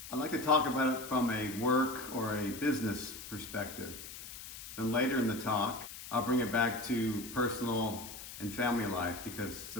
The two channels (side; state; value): left; noise; hiss, 12 dB below the sound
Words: I'd like to talk about it from a work or a business perspective. Then later in the talk, I'll bring it back to personal and family life because the